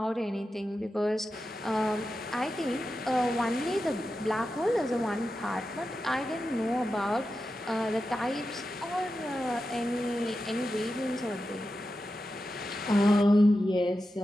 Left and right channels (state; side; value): normal; both; correlation 0.91